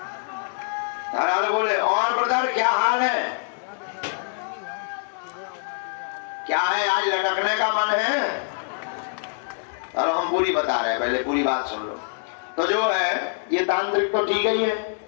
अरे बोले और ब्रदर क्या हाल है, क्या है आज लटकने का मन है? और हम पूरी बता रहे हैं, पहले पूरी बात सुन लो। तो जो है ये तांत्रिक तो ठीक ही है।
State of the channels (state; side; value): silent; right; digital silence